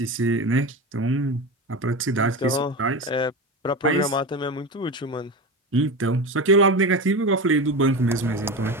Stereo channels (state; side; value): normal; both; correlation 0.24